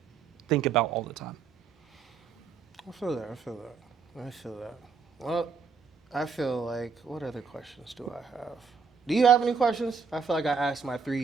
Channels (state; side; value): quieter; left; 5.5 dB